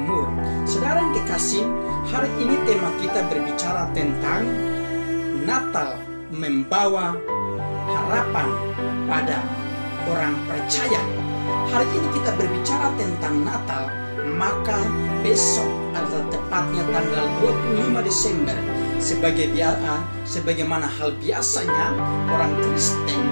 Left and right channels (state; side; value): inverted; both; correlation -1.00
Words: Saudara yang kekasih, hari ini tema kita berbicara tentang Natal membawa harapan pada orang percaya. Hari ini kita berbicara tentang Natal, maka besok adalah tepatnya tanggal 25 Desember. Sebagaimana hal biasanya, orang